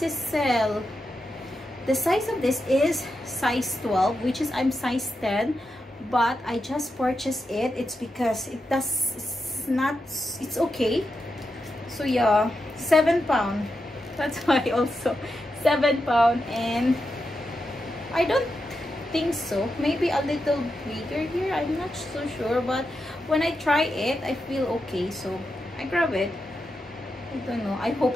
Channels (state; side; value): normal; both; correlation 0.87